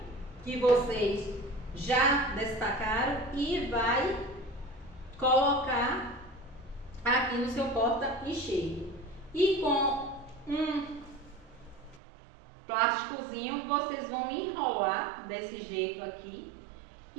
que vocês já destacaram e vai colocar aqui no seu porta-enxerto. E com um plásticozinho vocês vão enrolar desse jeito aqui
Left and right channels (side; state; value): left; drops out; at 12.0 s